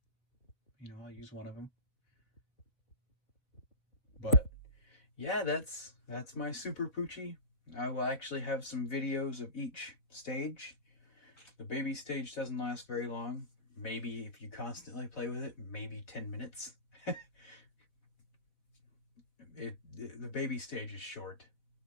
I'll use one of them. But yeah, that's my Super Poo-chi. I will actually have some videos of each stage. The baby stage doesn't last very long. Maybe if you constantly play with it, maybe 10 minutes. The baby stage is short.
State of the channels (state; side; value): late; right; 4.2 ms